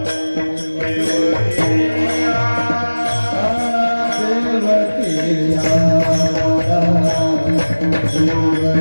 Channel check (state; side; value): inverted; both; correlation -1.00